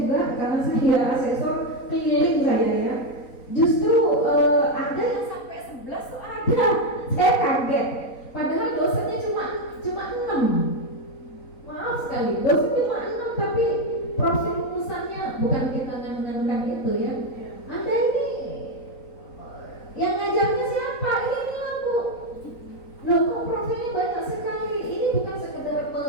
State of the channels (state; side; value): late; right; 3.9 ms